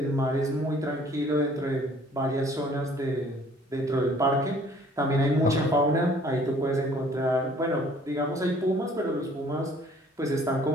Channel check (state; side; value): normal; both; correlation 0.56